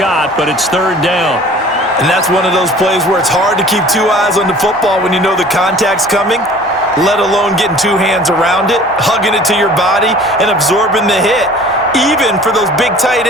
but it's 3rd down. And that's one of those plays where it's hard to keep 2 eyes on the football when you know the contact's coming, let alone getting 2 hands around it, hugging it to your body, and absorbing the hit, even for those big tight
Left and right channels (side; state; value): both; normal; correlation 0.47